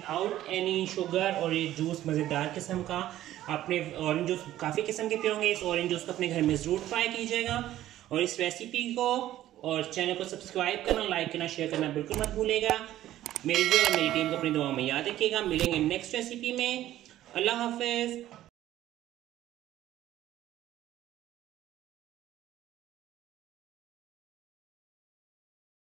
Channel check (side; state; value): left; quieter; 13.5 dB